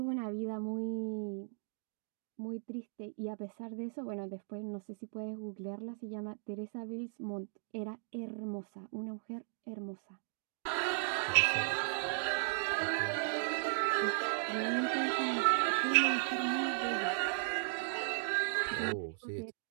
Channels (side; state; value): left; silent; digital silence